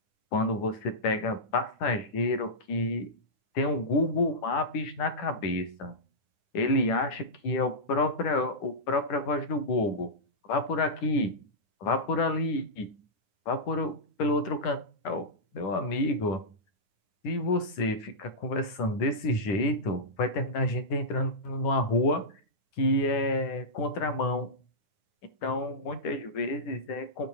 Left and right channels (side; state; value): right; late; 9.8 ms